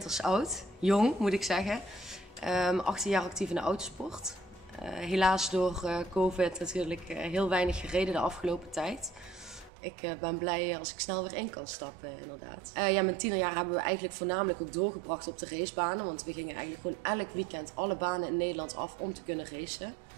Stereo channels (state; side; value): drops out; left; at 9.7 s